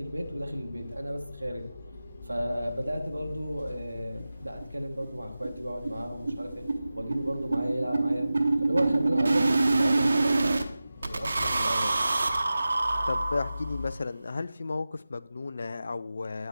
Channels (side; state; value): both; inverted; correlation -0.95